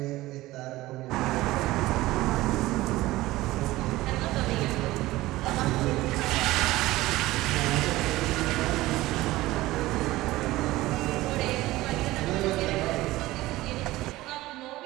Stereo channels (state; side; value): quieter; left; 17.9 dB